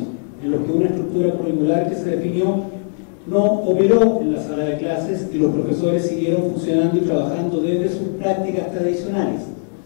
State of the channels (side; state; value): right; silent; digital silence